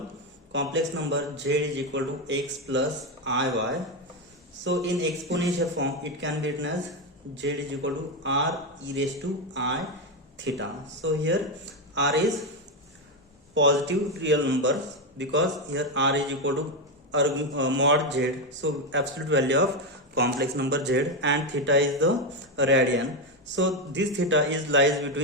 complex number z is equal to x plus iy, so in exponential form it can be written as z is equal to r e raised to I theta. So here r is positive real numbers because here r is equal to mod z, so absolute value of complex number z, and theta is the radian. So this theta is lies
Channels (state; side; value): normal; both; correlation 0.09